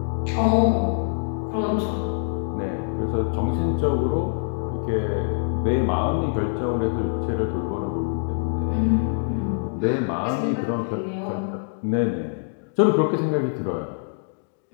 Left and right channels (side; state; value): right; silent; digital silence